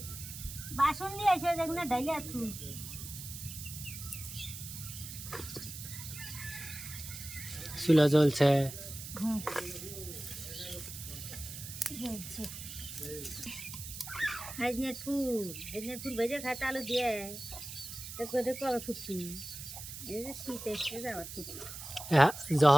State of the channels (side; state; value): right; noise; hiss, 10 dB below the sound